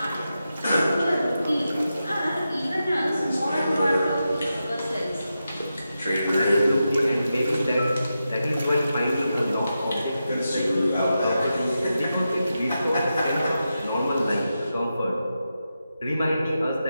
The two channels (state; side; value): inverted; both; correlation -0.89